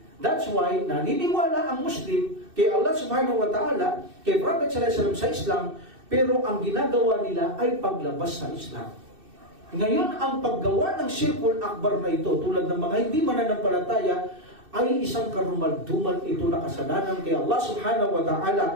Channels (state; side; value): late; left; 2.6 ms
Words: That's why naniniwala ang Muslim kay Allah subhanahu wa ta'ala, kay Prophet sallallahu alaihi wasallam sa Islam, pero ang ginagawa nila ay paglabas sa Islam. Ngayon, ang paggawa ng Shirkul Akbar na ito, tulad ng mga hindi mananampalataya, ay isang karumal-dumal ito na kasalanan kay Allah subhanahu wa